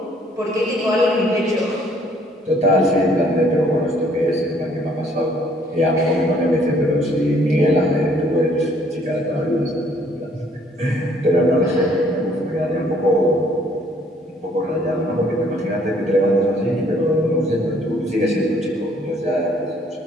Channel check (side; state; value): both; normal; correlation 0.62